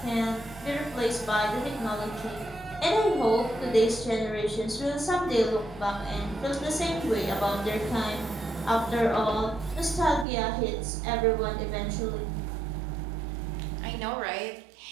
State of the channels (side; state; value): left; drops out; at 10.2 s